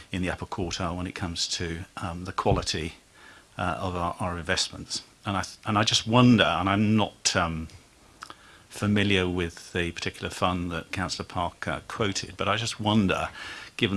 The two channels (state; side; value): identical; both; correlation 1.00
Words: in the upper quartile when it comes to the quality of our investments. And I just wonder, and I'm not familiar with the particular fund that Councillor Parker quoted, but I just wonder, given